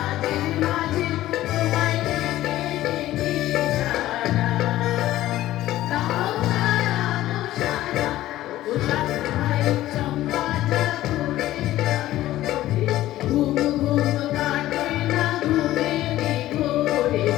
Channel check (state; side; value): quieter; right; 14.8 dB